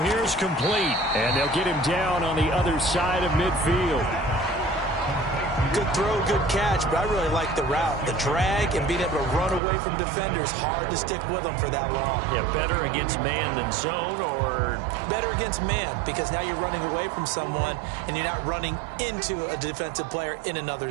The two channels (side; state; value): left; drops out; at 9.6 s